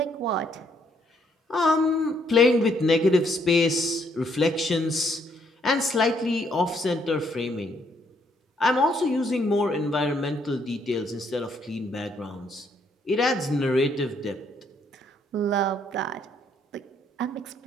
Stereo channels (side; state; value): both; normal; correlation 0.70